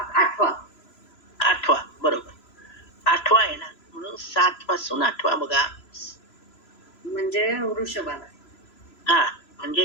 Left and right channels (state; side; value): late; right; 3.0 ms